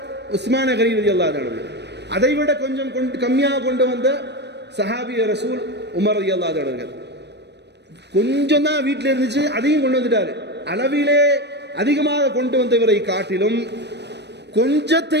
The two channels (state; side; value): late; left; 0.50 ms